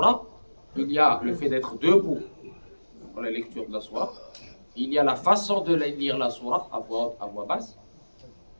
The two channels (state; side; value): inverted; both; correlation -1.00